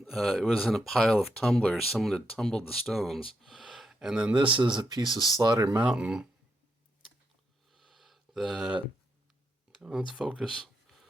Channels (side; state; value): both; normal; correlation 0.81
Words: It was in a pile of tumblers. Someone had tumbled the stones. And then this is a piece of Slaughter Mountain let's focus.